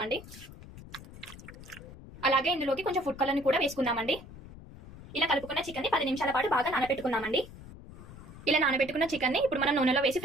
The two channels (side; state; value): left; noise; rumble, 16 dB below the sound